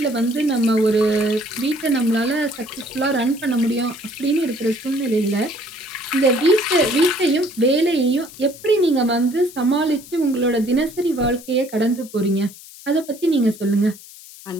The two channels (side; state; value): left; noise; hiss, 18 dB below the sound